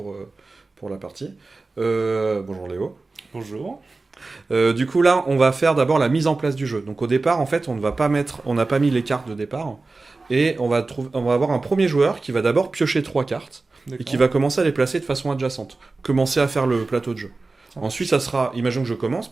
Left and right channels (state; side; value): quieter; left; 3.6 dB